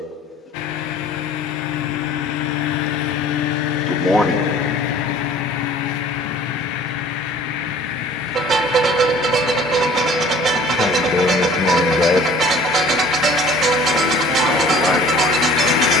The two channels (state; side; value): normal; both; correlation 0.49